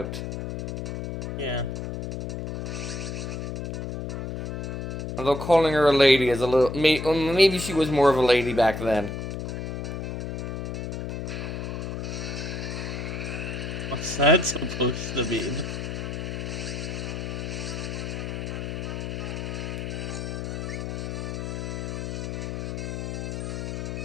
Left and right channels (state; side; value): noise; left; hum, 4 dB below the sound